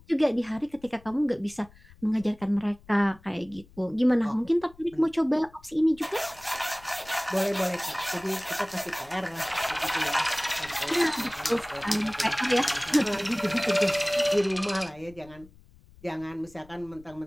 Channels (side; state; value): left; noise; rumble, 25 dB below the sound